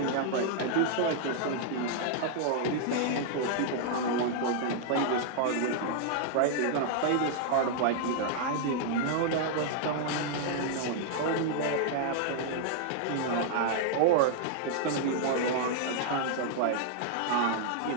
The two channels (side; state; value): both; different; correlation -0.01